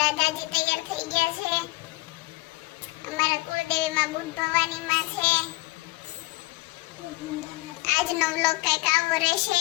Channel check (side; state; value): right; quieter; 21.7 dB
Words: તૈયાર થઈ ગયા છે. અમારા કુળદેવીમાં બુટ ભવાનીમાં છે. આજનો વ્લોગ કંઈક આવો રહેશે